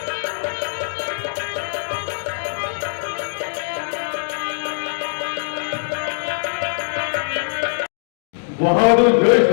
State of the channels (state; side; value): silent; right; digital silence